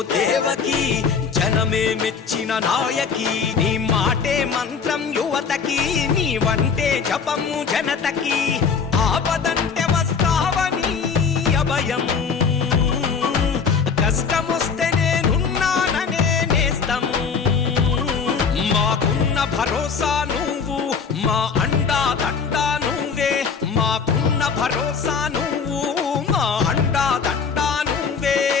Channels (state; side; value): quieter; right; 5.8 dB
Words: దేవకి, జనమే మెచ్చిన నాయకి. నీ మాటే మంత్రం యువతకి, నీ వంటే జపము జనతకి. ఆపదంటే వస్తావని అభయం, కష్టమొస్తే నేనున్నాననే నేస్తము. మాకున్న భరోసా నువ్వు, మా అండా దండా నువ్వే. మాకున్న భరోసా నువ్వు,